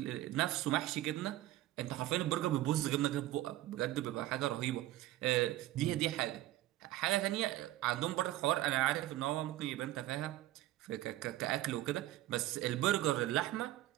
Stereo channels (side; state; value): left; quieter; 15.4 dB